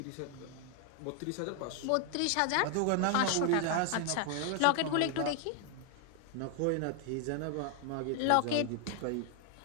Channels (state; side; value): different; both; correlation 0.00